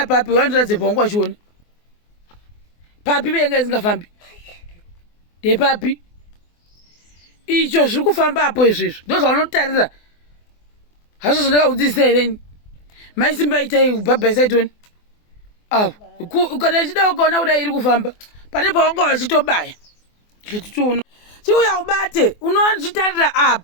papi wandiradzepa wangu wachiona papi venga isingafambi ndepapi icho zviri kufamba apo izvezvo ndo zvaunotarira hazvo zvandakaudzisa hereni maisimba itai kubhabhaisaitoni awo kana ichida ukaona kudai iri kufamba pane pawanga wachitobaya chititoona chiuya ubate unochitarira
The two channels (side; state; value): right; late; 24 ms